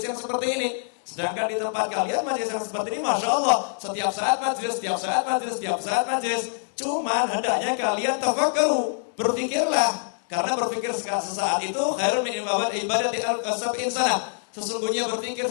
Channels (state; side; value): silent; right; digital silence